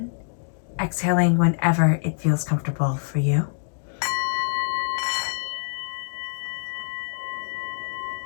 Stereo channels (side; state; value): right; silent; digital silence